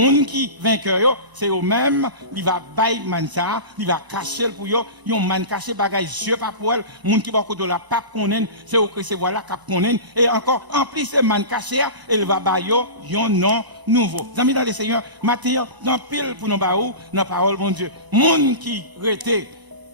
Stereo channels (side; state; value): left; late; 1.0 ms